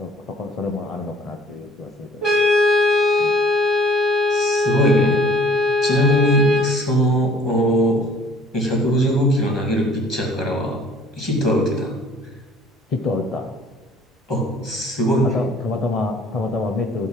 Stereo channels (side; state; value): both; normal; correlation 0.54